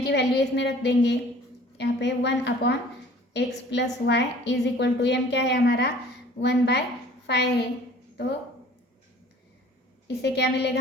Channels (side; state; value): both; normal; correlation 0.50